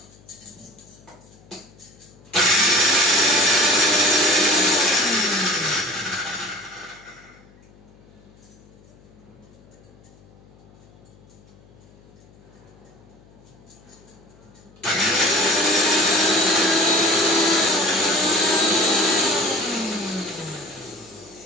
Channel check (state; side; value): noise; left; hum, 27 dB below the sound